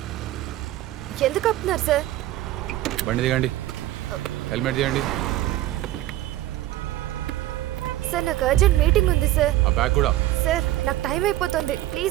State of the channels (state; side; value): quieter; left; 15.1 dB